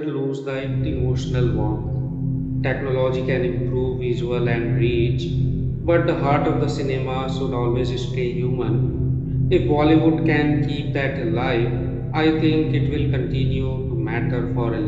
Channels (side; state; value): both; identical; correlation 1.00